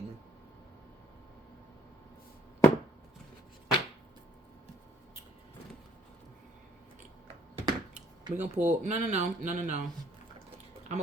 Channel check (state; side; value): normal; both; correlation 0.64